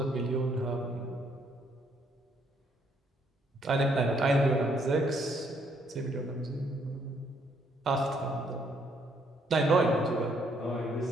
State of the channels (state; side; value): normal; both; correlation 0.70